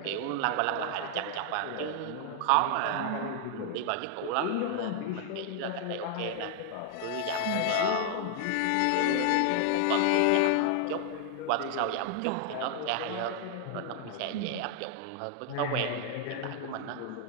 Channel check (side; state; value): both; different; correlation 0.00